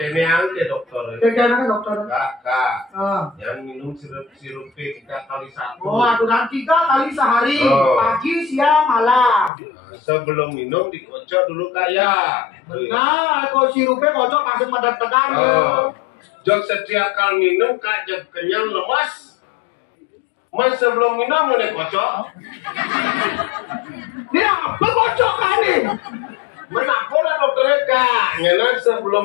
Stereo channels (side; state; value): right; drops out; at 9.5 s